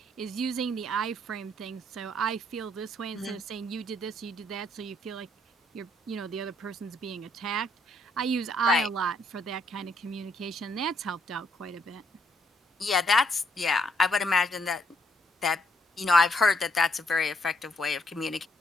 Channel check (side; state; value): both; normal; correlation 0.71